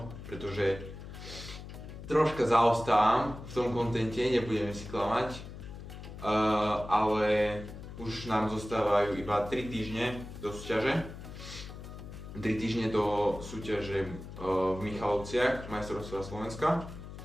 pretože troška zaostávam v tom kontente, nebudeme si klamať, ale už nám zostávajú iba 3 týždne do súťaže. 3 týždne do súťaže v Michalovciach, majstrovstvá Slovenska,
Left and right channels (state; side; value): noise; left; hum, 12 dB below the sound